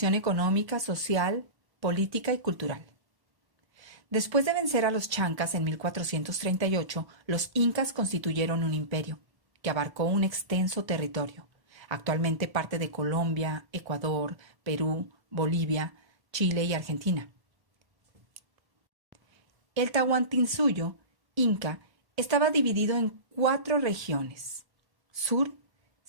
económica, social, política y cultural. Después de vencer a los chancas en 1438, los incas constituyeron un imperio que abarcó un extenso territorio, actualmente parte de Colombia, Ecuador, Perú, Bolivia, Chile y Argentina. El Tahuantinsuyo, inca, estaba dividido en 4 regiones: sur,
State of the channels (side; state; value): left; late; 1.1 ms